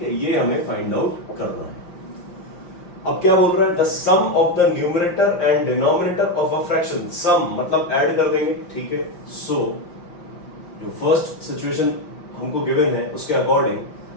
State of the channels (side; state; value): right; late; 5.8 ms